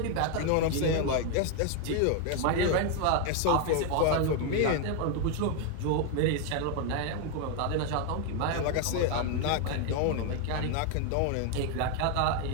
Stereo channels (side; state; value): both; different; correlation 0.01